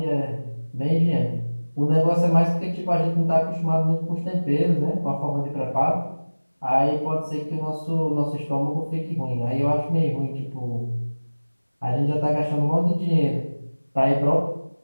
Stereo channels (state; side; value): inverted; both; correlation -1.00